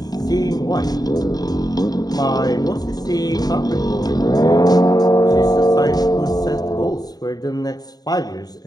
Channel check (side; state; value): right; late; 0.19 ms